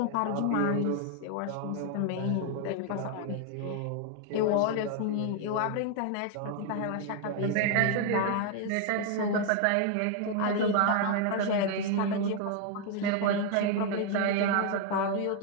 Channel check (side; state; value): both; different; correlation 0.00